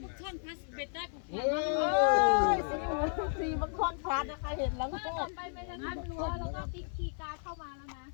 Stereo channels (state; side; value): silent; right; 55 dB below the other